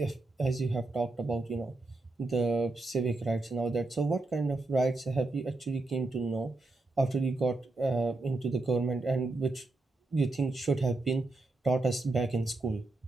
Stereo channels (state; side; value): quieter; left; 3.1 dB